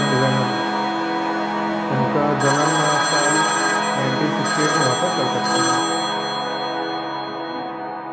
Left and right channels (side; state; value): both; identical; correlation 1.00